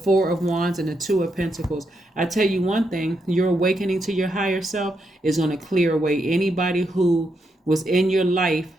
of Wands, and the Two of Pentacles. I tell you one thing, your awakening to your higher self is going to clear away anybody who was in your life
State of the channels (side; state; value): both; normal; correlation 0.81